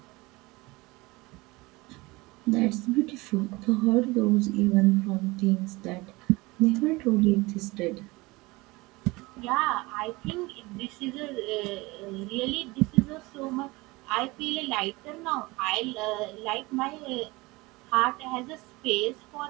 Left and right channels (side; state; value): left; quieter; 22.7 dB